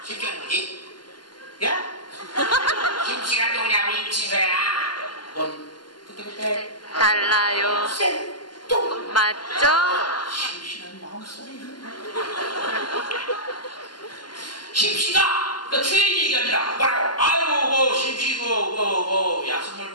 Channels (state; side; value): late; right; 0.71 ms